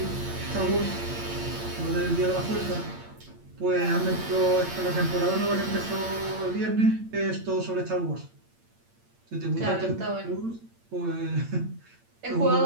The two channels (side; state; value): left; late; 8.8 ms